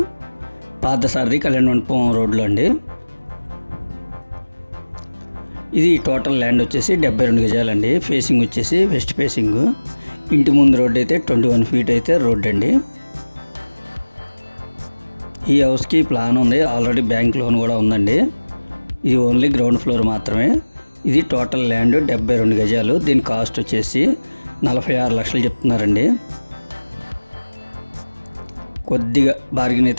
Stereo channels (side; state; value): both; inverted; correlation -1.00